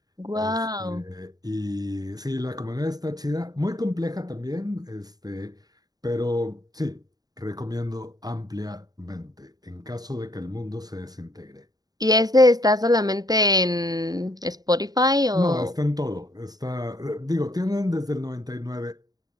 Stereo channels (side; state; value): left; late; 0.19 ms